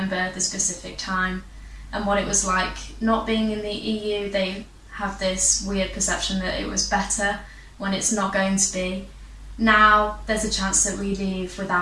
the specific time and what it was like not being in the EU. They have this weird perception that it was better when it's not going to be. Now there's a chance that we leave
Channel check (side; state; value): both; identical; correlation 1.00